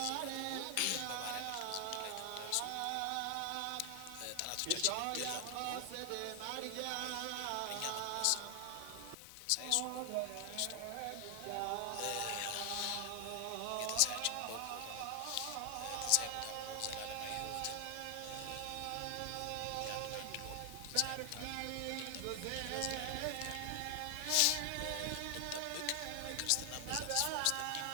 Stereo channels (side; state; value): both; different; correlation 0.00